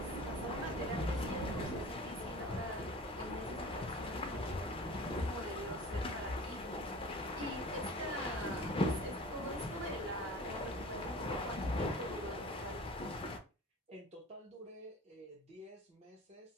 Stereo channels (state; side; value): normal; both; correlation 0.41